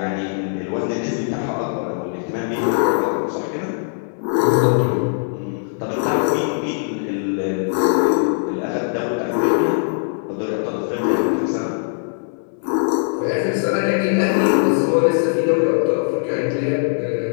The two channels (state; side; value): silent; right; 64 dB below the other